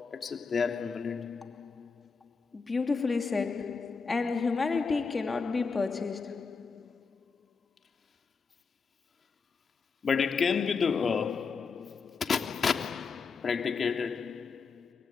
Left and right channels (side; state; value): right; quieter; 5.1 dB